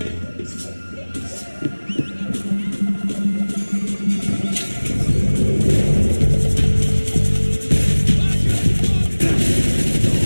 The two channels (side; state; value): both; inverted; correlation -1.00